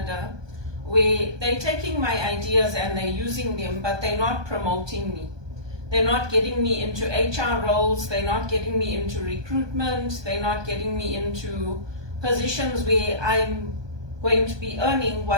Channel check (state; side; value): late; left; 1.2 ms